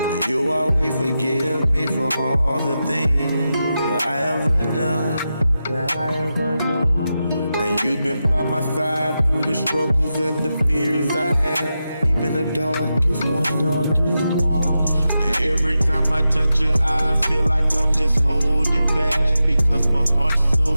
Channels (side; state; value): both; inverted; correlation -0.90